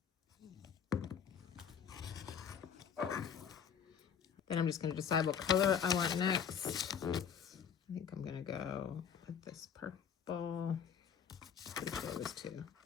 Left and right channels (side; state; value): right; quieter; 7.6 dB